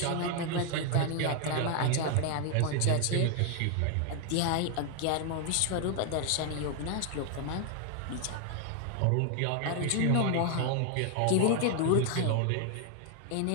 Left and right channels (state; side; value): different; both; correlation 0.00